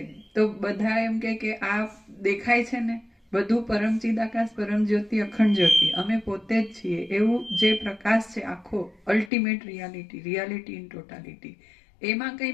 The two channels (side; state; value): right; drops out; at 9.3 s